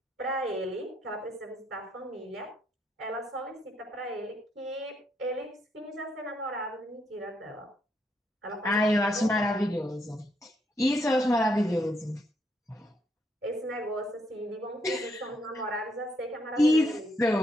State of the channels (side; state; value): both; normal; correlation 0.75